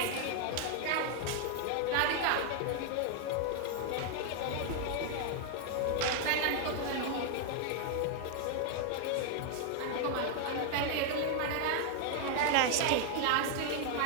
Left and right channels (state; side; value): different; both; correlation 0.00